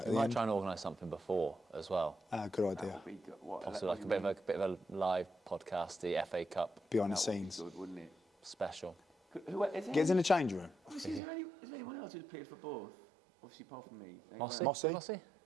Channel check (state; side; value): drops out; left; at 11.2 s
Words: We the might end. try and organise something before as well. Good idea. Possibly like a bit of a live podcast, the FA Cup Behind the scenes. Good, wouldn't it? special. Who is Gets in the change room. Is there anyone else who's played for both? Obviously, apart from me. Mossy? Mossy?